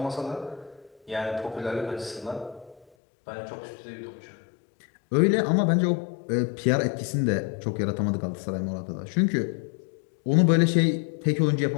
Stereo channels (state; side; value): drops out; right; at 2.9 s